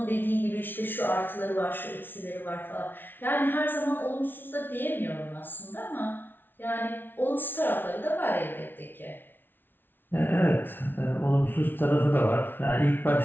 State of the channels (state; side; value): late; right; 0.098 ms